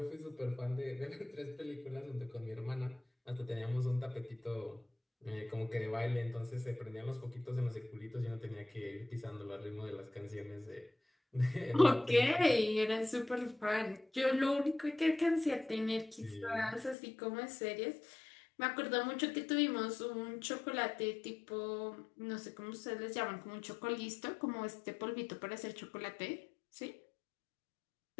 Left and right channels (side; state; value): right; drops out; at 16.9 s